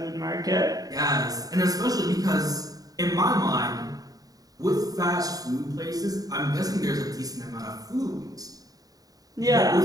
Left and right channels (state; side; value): late; left; 0.18 ms